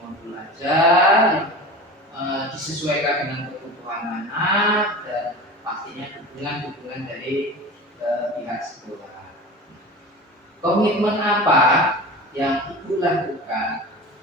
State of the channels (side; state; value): both; normal; correlation 0.33